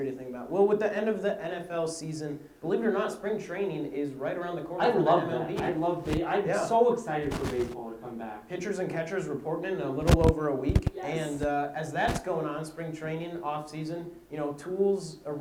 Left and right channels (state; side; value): identical; both; correlation 1.00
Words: to think about. Well, with the end of the NFL season, believe it or not, spring training is right around the corner. I love MLB. that. I'm so excited for baseball to come back. Pitchers and catchers reporting in a little over a week. Yes. And as that's going on, spring training, off season, tools,